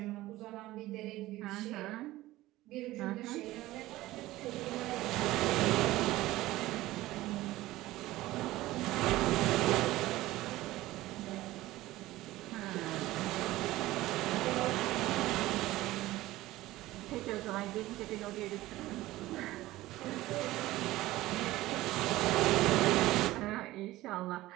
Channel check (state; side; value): quieter; left; 17.1 dB